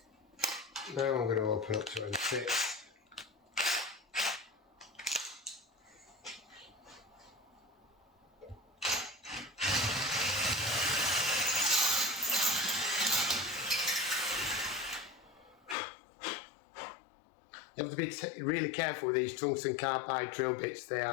Now I'm going to open up to M6. You have to be really careful with these tungsten carbide drill bits. They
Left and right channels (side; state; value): right; drops out; at 15.8 s